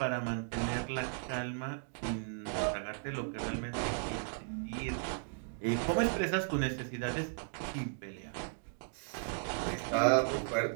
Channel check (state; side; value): silent; left; digital silence